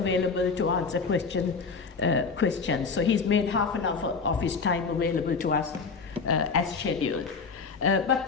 to answer questions. So he's made half an hour of his time available to us as scheduled.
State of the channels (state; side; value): quieter; right; 5.0 dB